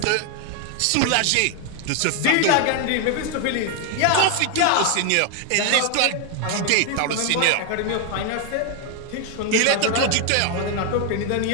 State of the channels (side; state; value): both; different; correlation 0.00